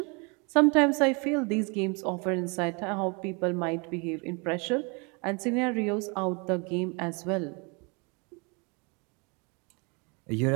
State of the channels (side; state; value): left; quieter; 31.7 dB